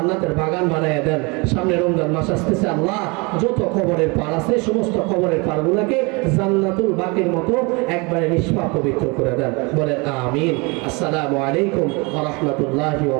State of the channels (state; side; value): quieter; left; 28.4 dB